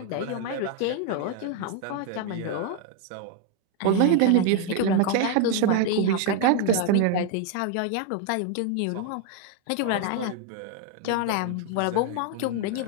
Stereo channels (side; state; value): both; different; correlation 0.01